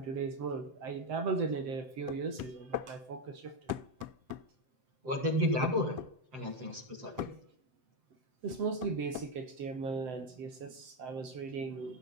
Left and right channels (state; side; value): late; left; 7.8 ms